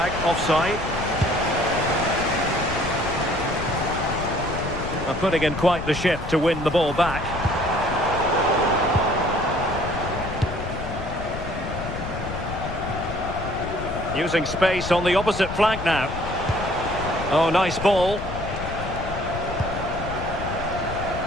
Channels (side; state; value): left; noise; rumble, 8 dB below the sound